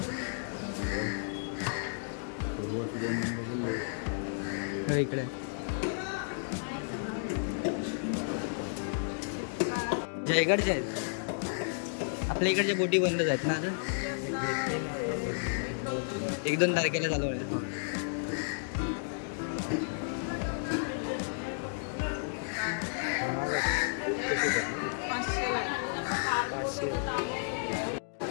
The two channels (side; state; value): right; silent; digital silence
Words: इकडे जयगडचे आहेत, आपल्या इकडच्या बोटी बंदच आहेत ना। आता 1-2 तारखेला चालू आहे।